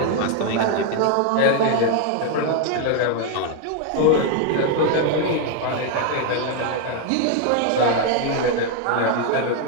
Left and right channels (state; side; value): different; both; correlation 0.01